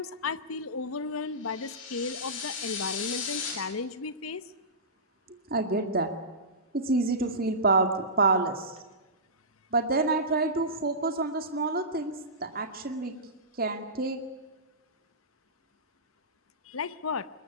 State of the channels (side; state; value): both; normal; correlation -0.20